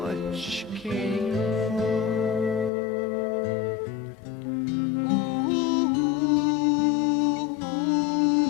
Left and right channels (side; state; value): right; drops out; at 2.7 s